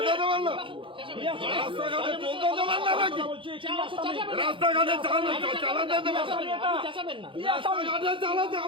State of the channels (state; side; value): late; left; 0.25 ms